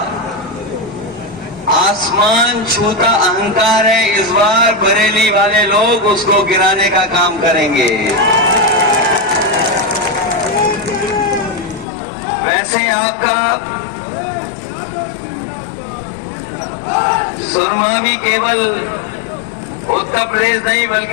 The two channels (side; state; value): right; drops out; at 11.9 s